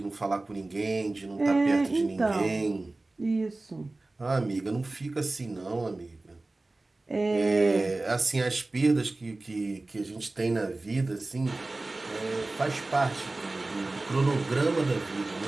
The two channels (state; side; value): quieter; left; 3.0 dB